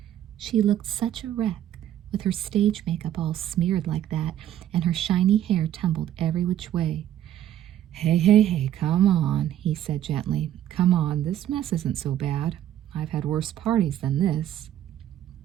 She looked such a wreck, with her stage makeup all smeared like that, and her shiny hair tumbled every which way. Hey, come on," he said gently. "Come on, this mess isn't so bad. I've had worse parties than this."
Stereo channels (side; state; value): left; quieter; 11.7 dB